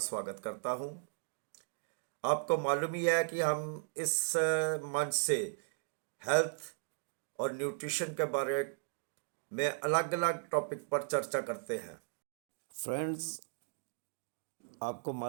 करता हूं। आपको मालूम ही है कि हम इस मंच से हेल्थ और न्यूट्रिशन के बारे में अलग अलग टॉपिक पर चर्चा करते हैं। फ्रेंड्स, आपको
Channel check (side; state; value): left; silent; digital silence